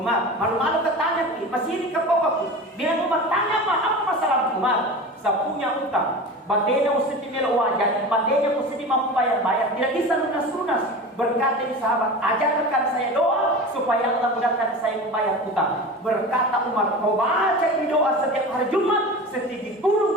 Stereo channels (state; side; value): normal; both; correlation 0.32